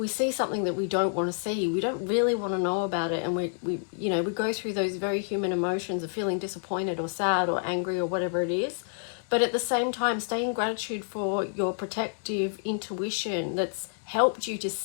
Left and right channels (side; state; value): right; silent; digital silence